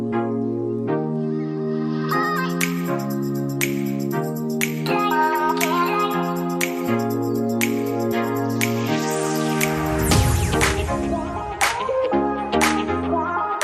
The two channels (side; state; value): both; identical; correlation 1.00